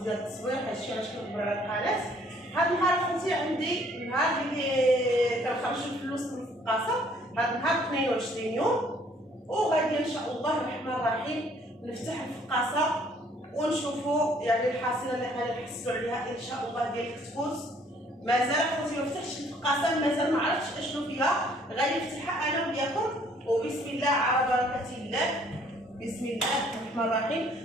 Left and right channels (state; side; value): normal; both; correlation 0.61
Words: ديال التصوير. هادشي علاش كنكبر على القناه. هاد النهار خوتي عندي نهار اللي كنخرجوا الفلوس من الفقاصه. هاد النهار 22 يوم وغادي ان شاء الله الرحمن الرحيم نفتح الفقاصه ونشوفوا يعني الحاصله اللي غادي نحصلوا عليها ان شاء الله ديال الكتكوت. مازال خوتي ما فتحتش الفقاصه، مازال ما عرفتش اشنو فيها، غادي نفتحها انا وياكم وبسم الله على بركه الله. بسم الله الرحمن